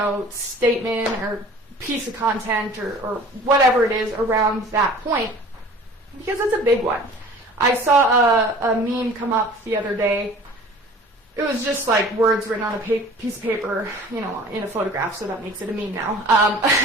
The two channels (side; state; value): both; normal; correlation 0.45